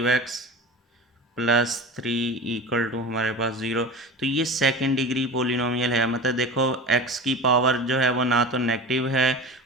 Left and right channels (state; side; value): normal; both; correlation 0.32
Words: प्लस 3 इक्वल टू हमारे पास 0। तो ये सेकंड डिग्री पोलिनोमियल है। मतलब देखो x की पावर जो है वो ना तो नेगेटिव है